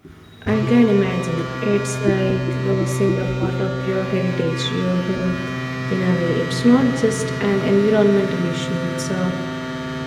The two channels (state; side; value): identical; both; correlation 1.00